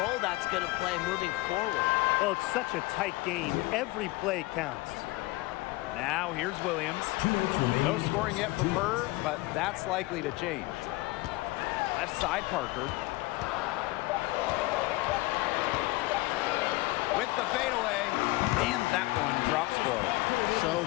that's going to play moving forward. Well, it's such a tight game. Every play counts. Now here's Williams. 2 minutes remaining. No scoring yet from her, but that's likely to change. Left side, Parker. With the fadeaway, and that one drops for her. So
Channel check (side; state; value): right; quieter; 21.2 dB